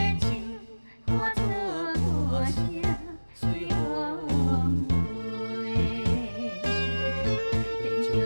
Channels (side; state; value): both; inverted; correlation -1.00